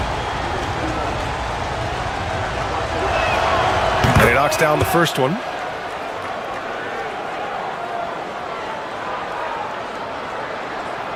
Down the first one.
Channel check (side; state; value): both; identical; correlation 1.00